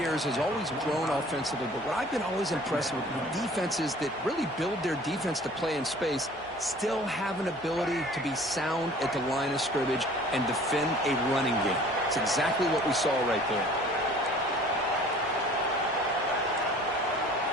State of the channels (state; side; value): normal; both; correlation 0.49